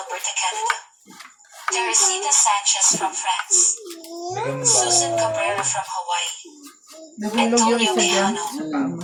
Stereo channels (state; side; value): identical; both; correlation 1.00